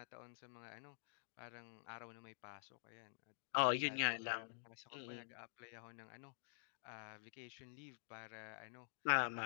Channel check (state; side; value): silent; right; digital silence